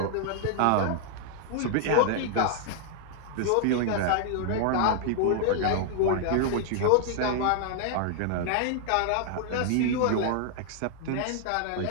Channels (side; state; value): both; different; correlation -0.01